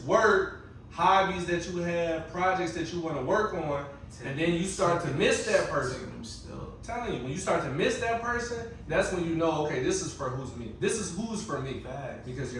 work, hobbies that you have, projects that you want to work on, and then you start to miss that person. I'm telling you, when you start to miss that person, that's when you know, okay, this is for who's me. This is who's for me. Because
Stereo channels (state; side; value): identical; both; correlation 1.00